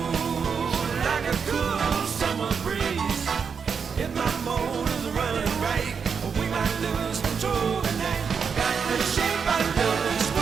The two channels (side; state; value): left; quieter; 6.2 dB